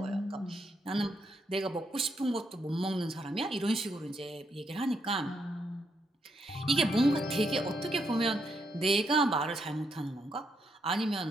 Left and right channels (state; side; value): normal; both; correlation 0.78